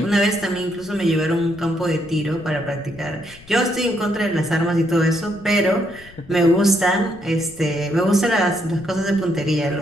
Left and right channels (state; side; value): noise; left; rumble, 23 dB below the sound